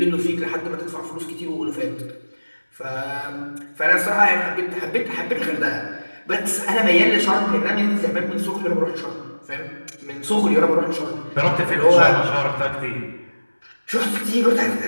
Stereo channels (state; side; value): inverted; both; correlation -1.00